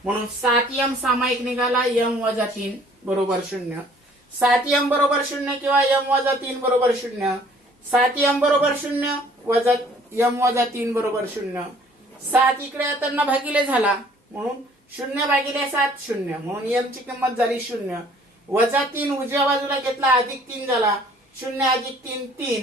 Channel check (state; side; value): normal; both; correlation 0.56